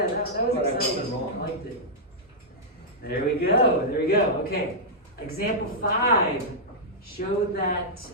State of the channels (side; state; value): both; normal; correlation -0.09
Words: that was But I wasn't exciting. wrong. I liked it. There we go, okay. Example 5, show that